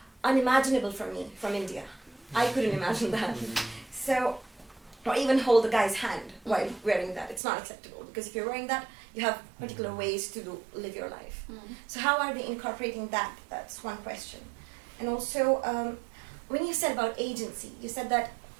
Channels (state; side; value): drops out; left; at 7.4 s